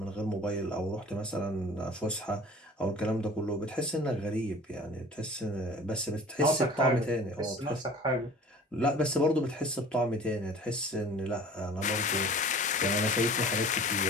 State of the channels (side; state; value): both; normal; correlation 0.45